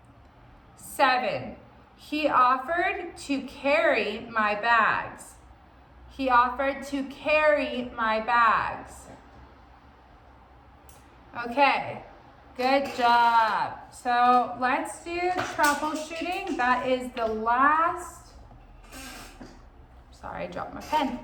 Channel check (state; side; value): identical; both; correlation 1.00